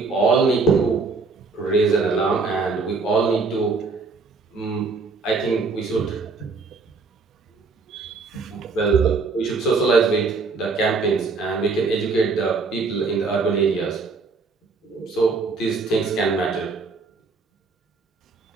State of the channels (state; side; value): quieter; left; 4.3 dB